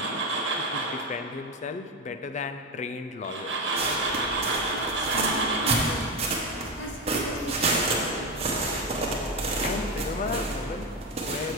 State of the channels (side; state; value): both; normal; correlation 0.14